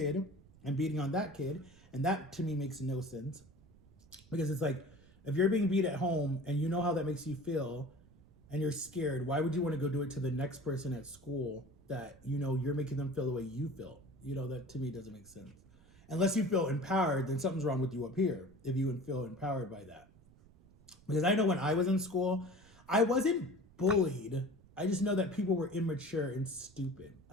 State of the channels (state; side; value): noise; right; rumble, 26 dB below the sound